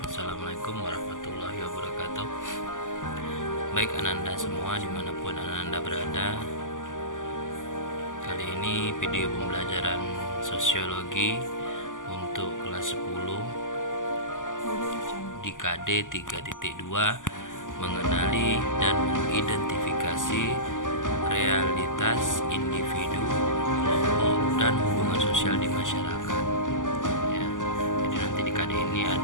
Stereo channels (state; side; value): late; right; 0.88 ms